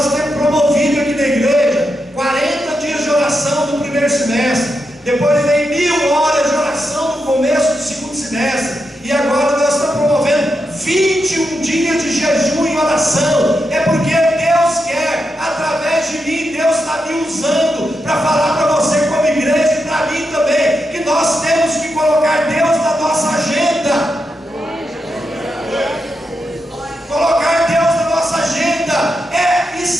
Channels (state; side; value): normal; both; correlation 0.86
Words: temos promovido aqui na igreja 40 dias de oração no primeiro semestre. Depois vem 1000 horas de oração no começo do segundo semestre. E agora nós estamos promovendo 21 dias de jejum e oração. É porque Deus quer, através de mim, Deus está me usando para falar para você como igreja e para mim também, que nós temos que colocar Deus na nossa agenda. Colocar Deus na nossa agenda é